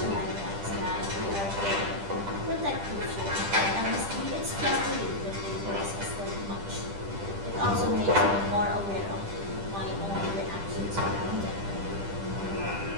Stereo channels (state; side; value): late; left; 10 ms